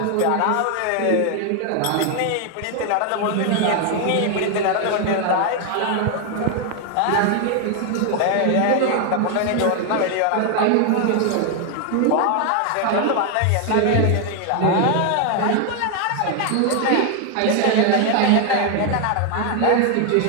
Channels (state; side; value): different; both; correlation 0.01